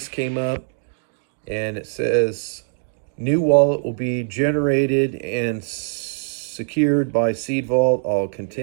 came up and it says new wallet will be generated and secured by Seed Vault. I'll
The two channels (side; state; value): left; silent; digital silence